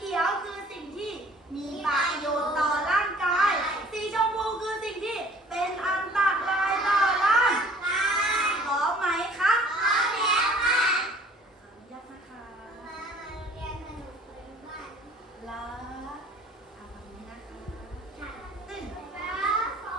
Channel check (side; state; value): both; normal; correlation 0.53